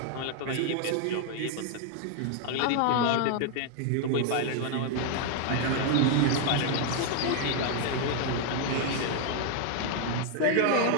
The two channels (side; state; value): both; different; correlation 0.00